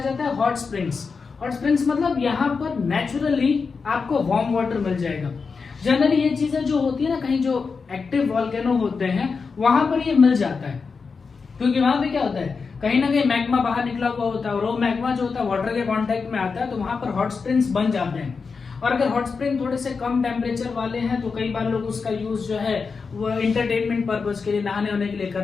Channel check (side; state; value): right; quieter; 5.0 dB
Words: जाता है हॉट स्प्रिंग्स। हॉट स्प्रिंग्स मतलब यहाँ पर नेचुरली आपको वार्म वाटर मिल जाएगा। जनरली ये चीजें जो होती है ना, कहीं जो एक्टिव वॉल्केनो होते हैं वहां पर ये मिल जाता है, क्योंकि वहां पे क्या होता है, कहीं ना कहीं मैग्मा बाहर निकला हुआ होता है और वो मैग्मा जो होता है वाटर के कांटेक्ट में आता है, तो वहां पर हॉट स्प्रिंग्स बन जाते हैं। और अगर हॉट स्प्रिंग थोड़े से कम टेम्परेचर वाले हैं तो कई बार लोग उसका यूज जो है वो एंटरटेनमेंट पर्पज के लिए, नहाने वहाने के लिए